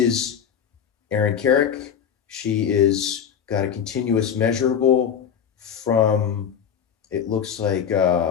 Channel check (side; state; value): right; quieter; 8.1 dB